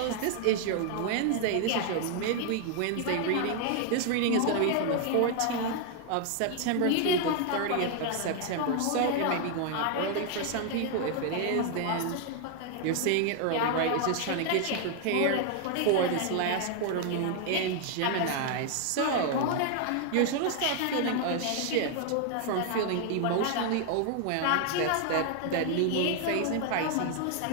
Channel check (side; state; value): both; different; correlation 0.00